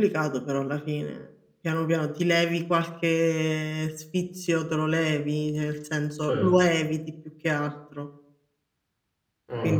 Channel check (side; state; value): both; identical; correlation 1.00